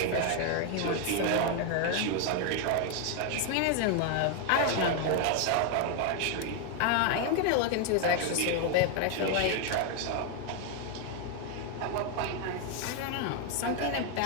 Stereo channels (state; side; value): different; both; correlation 0.01